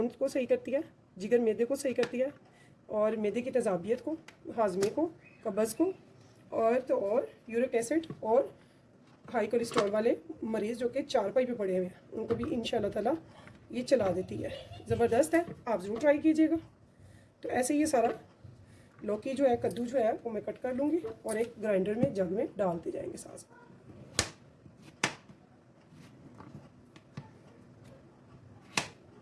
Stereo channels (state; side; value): identical; both; correlation 1.00